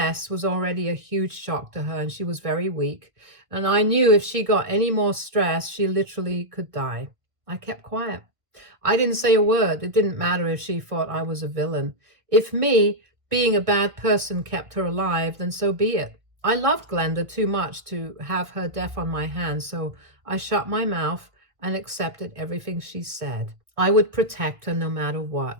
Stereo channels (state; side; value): late; left; 1.5 ms